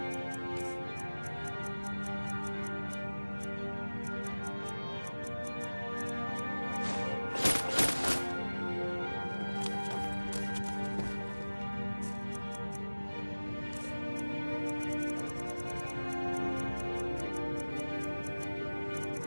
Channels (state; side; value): inverted; both; correlation -1.00